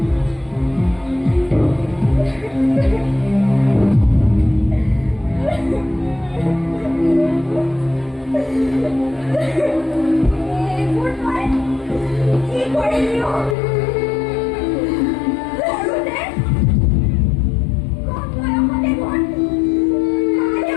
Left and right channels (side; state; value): right; drops out; at 13.6 s